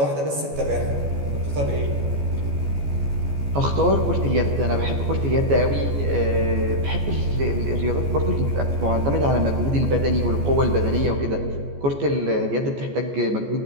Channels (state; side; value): late; left; 14 ms